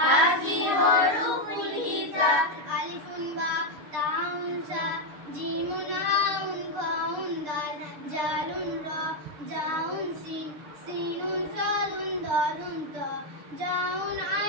হরফুল হিজা আলিফুন বা তাউন সা জিমুন হাউন খাউন দাল জালুন রা জাউন সিন সিনুন সাদুন দাদুন ত জাউন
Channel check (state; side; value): late; left; 6.7 ms